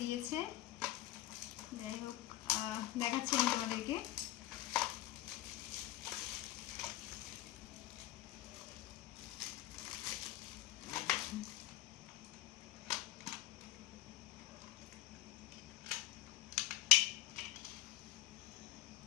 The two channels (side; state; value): right; quieter; 15.2 dB